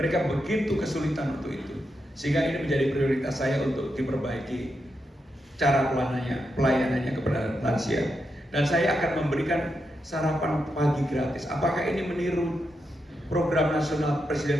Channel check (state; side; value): normal; both; correlation 0.85